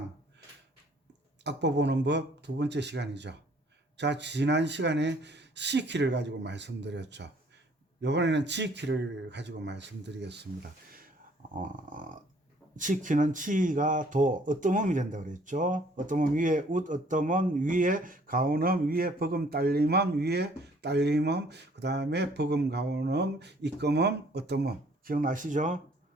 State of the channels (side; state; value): both; normal; correlation 0.60